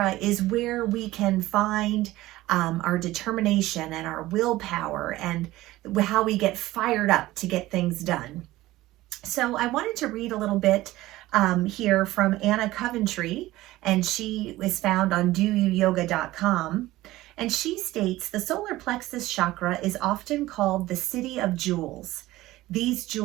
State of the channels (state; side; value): quieter; left; 17.1 dB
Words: is where we can find our determination and our willpower and how we get fired up to get things done. So I wanted to read a little bit here from Anna Coventry, and she is found on doyouyoga.com. And she states, the solar plexus chakra is often called the city of jewels. These